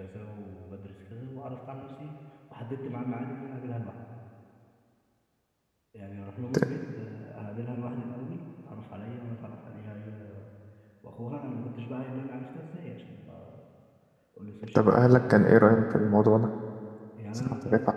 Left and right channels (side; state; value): both; identical; correlation 1.00